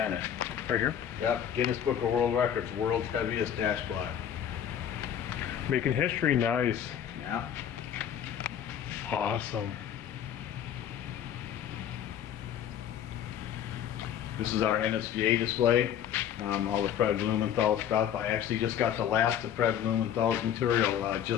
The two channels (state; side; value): quieter; right; 9.5 dB